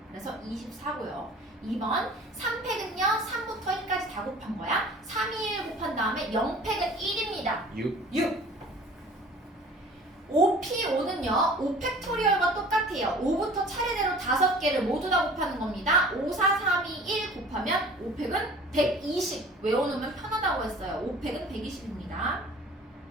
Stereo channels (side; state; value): both; normal; correlation 0.46